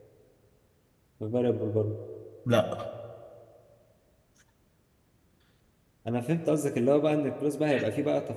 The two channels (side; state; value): both; identical; correlation 1.00